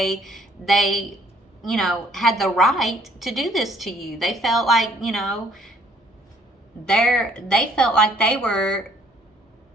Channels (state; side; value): normal; both; correlation 0.62